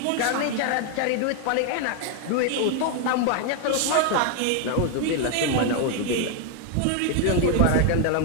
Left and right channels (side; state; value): both; different; correlation 0.01